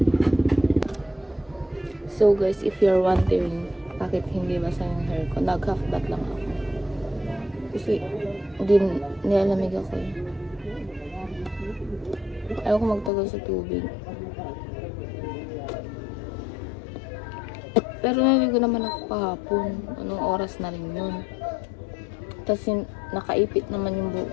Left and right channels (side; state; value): right; drops out; at 13.1 s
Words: So guys, if you're wondering bakit hindi basa yung hair ko, nag-half bath lang ako. Kasi nilalamig ako eh. Ayaw ko magtagal sa tubig. Pero naligo naman ako kahapon. Anong oras na rin yun. Tapos nakaipit naman yung